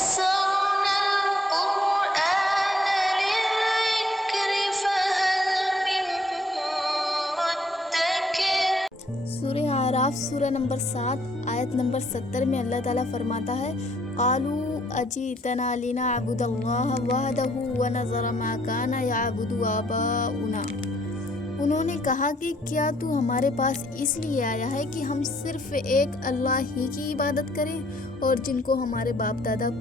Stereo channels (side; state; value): both; normal; correlation 0.67